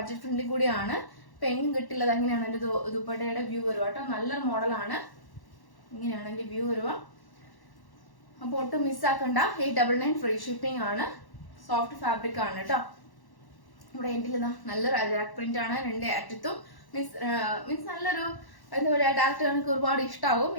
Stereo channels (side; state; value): right; late; 1.1 ms